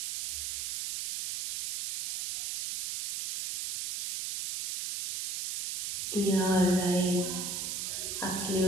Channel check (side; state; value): right; noise; hiss, 4 dB below the sound